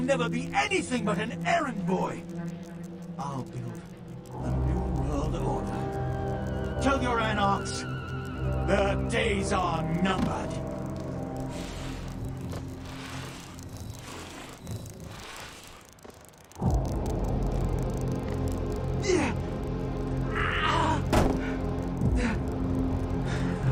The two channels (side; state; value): both; identical; correlation 1.00